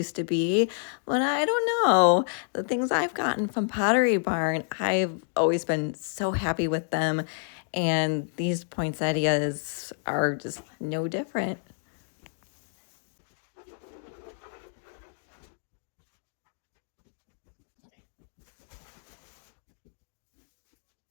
to be, but I don't know. The things I've gotten from Pottery Barn, I've always been so happy with them, and these poinsettias are just no different.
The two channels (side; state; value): right; silent; 58 dB below the other